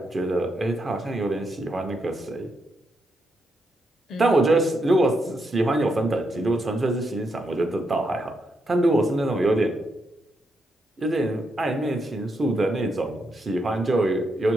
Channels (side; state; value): both; normal; correlation 0.81